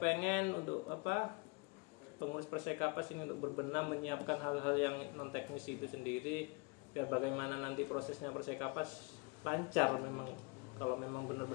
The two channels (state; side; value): quieter; right; 27.9 dB